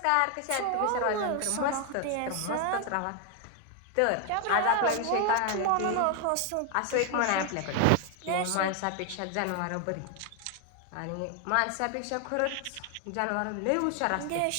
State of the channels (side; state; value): both; different; correlation 0.00